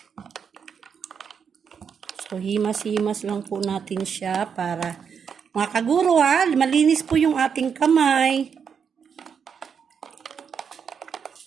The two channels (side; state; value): left; quieter; 6.8 dB